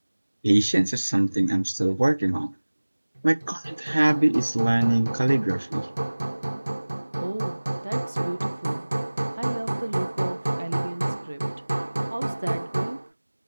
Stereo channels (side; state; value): both; inverted; correlation -1.00